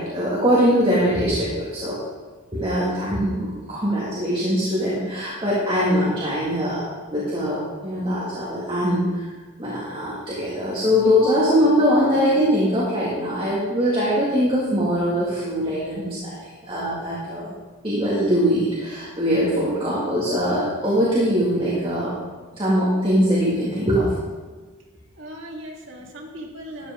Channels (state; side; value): normal; both; correlation 0.44